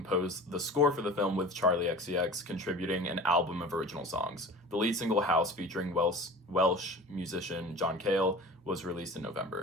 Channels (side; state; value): both; normal; correlation 0.39